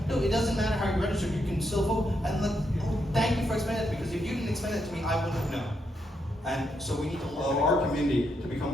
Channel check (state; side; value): normal; both; correlation 0.80